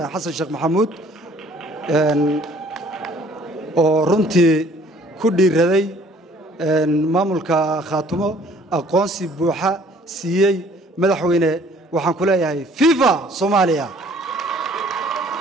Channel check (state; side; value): normal; both; correlation 0.57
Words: Xasan Sheekh Maxamuud oo runtii ku dhiiraday maamulka Khartoum aqoonsi buuxa siiyay madaxweyne waxaan ku leeyahay viva Soomaaliya